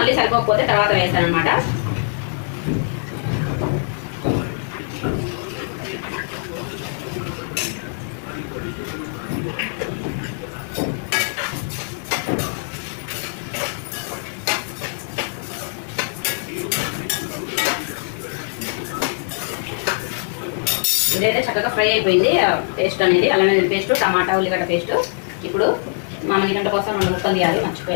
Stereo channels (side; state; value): right; silent; 56 dB below the other